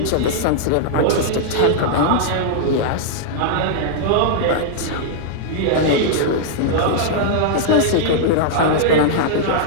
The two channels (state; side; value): different; both; correlation -0.01